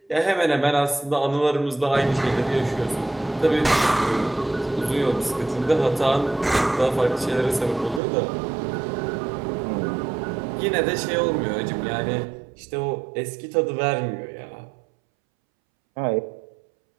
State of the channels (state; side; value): drops out; left; at 8.0 s